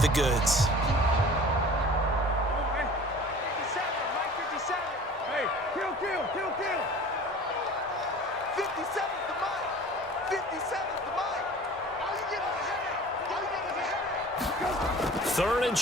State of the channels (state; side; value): normal; both; correlation 0.43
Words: the goods. Third and